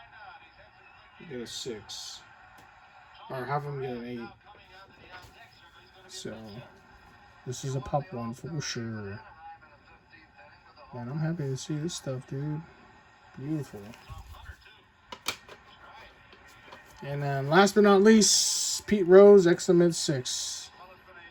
6. Or half of them get an 8. So, this is a pop one for sure. Man, I'm happy to see this stuff, dude. Beautiful. And then last but not least, Pete Rose, excellent 6.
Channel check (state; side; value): identical; both; correlation 1.00